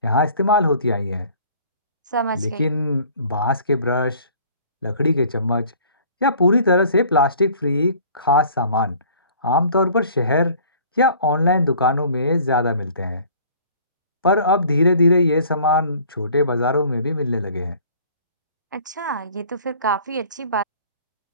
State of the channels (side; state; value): both; inverted; correlation -0.51